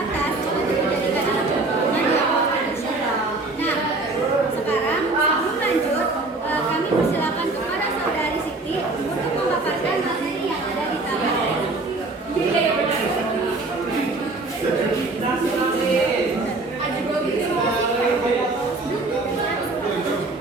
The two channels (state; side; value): quieter; left; 3.2 dB